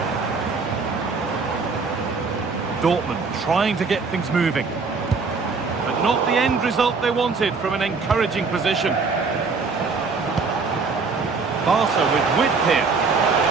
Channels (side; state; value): left; quieter; 4.6 dB